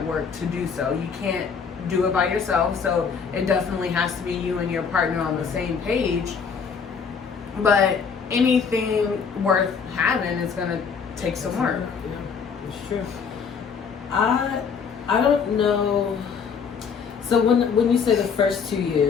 work to do so. You can't do it by yourself, so it definitely has to be you and your partner on the same page. But anything worth having is gonna take some work. Yeah, it's true. I don't know. So when you say the first 2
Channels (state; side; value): quieter; right; 6.1 dB